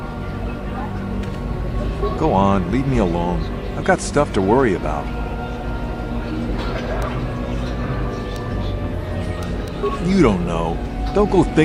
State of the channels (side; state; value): both; identical; correlation 1.00